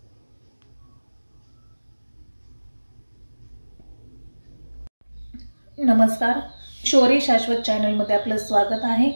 नमस्कार, शौर्य शाश्वत चॅनलमध्ये आपलं स्वागत आहे।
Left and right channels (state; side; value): inverted; both; correlation -1.00